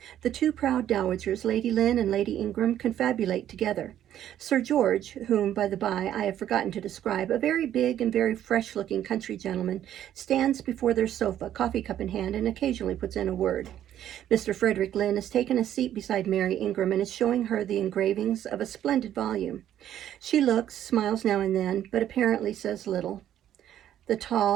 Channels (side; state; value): left; quieter; 11.2 dB